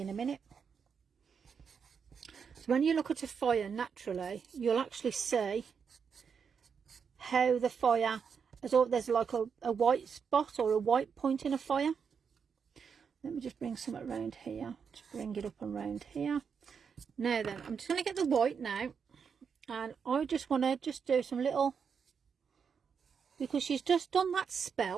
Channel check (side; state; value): left; quieter; 6.4 dB